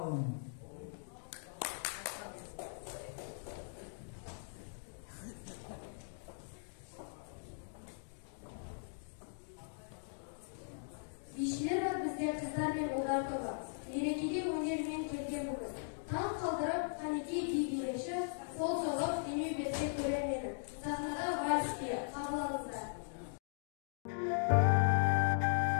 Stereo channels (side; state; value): right; silent; digital silence